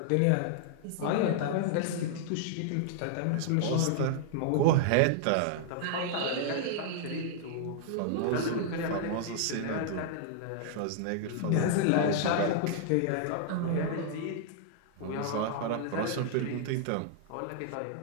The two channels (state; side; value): different; both; correlation -0.01